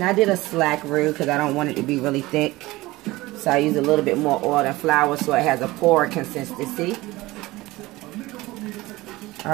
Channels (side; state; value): left; quieter; 19.6 dB